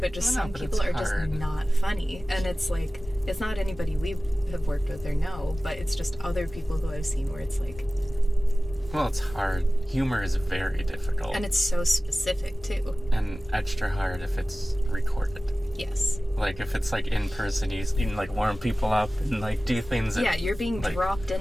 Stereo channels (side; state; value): both; normal; correlation 0.97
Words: just some people are just not funny. And it's like, it's not anybody we have worked with or know, but it's just other people who I've seen where it's like, Well, it's hard. Humor is very difficult. and it's so specific too. And extra hard if it's recorded. Yes. Like, if it's, like, in person, you can, like, warm people up and, like, do things that... Yeah, you're being like, dropped